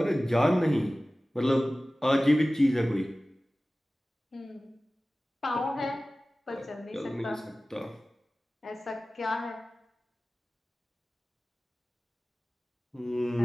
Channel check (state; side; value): normal; both; correlation 0.97